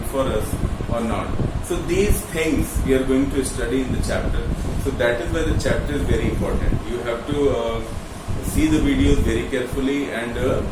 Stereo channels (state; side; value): identical; both; correlation 1.00